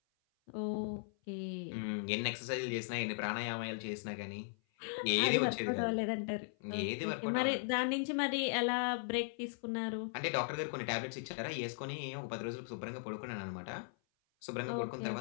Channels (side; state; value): right; silent; 52 dB below the other